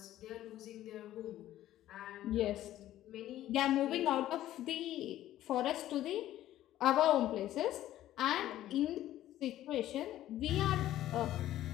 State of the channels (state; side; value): quieter; right; 13.5 dB